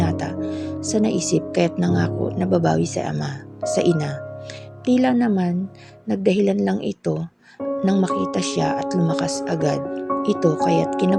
sa naisip kaya't nangako na babawi sa ina. Tila naman nagdahilan lang ito nang makita siya at lumakas agad ito kaya't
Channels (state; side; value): identical; both; correlation 1.00